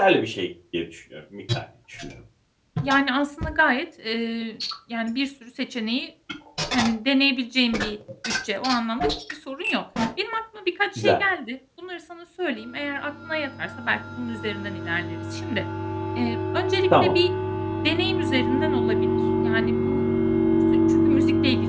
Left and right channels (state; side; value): identical; both; correlation 1.00